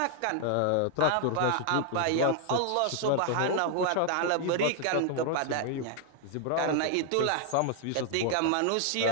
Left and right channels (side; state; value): both; different; correlation 0.00